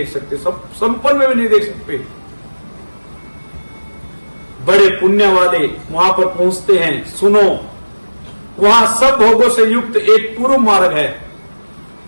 सकते, सब संपन्न में भी नहीं देख सकते। बड़े पुण्य वाले वहां पर पहुंचते हैं। सुनो, वहां सब भोगों से युक्त एक पूर्व मार्ग है,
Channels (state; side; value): inverted; both; correlation -1.00